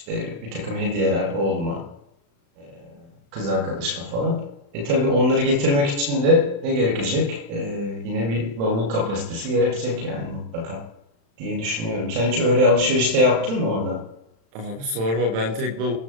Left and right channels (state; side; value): late; left; 35 ms